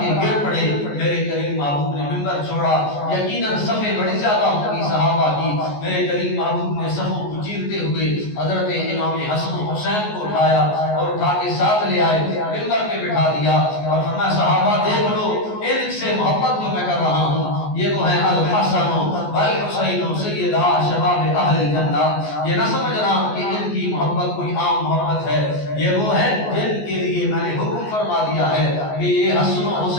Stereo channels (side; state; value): right; late; 14 ms